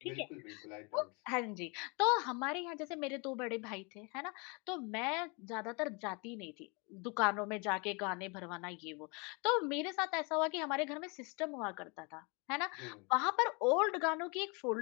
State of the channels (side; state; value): right; quieter; 30.9 dB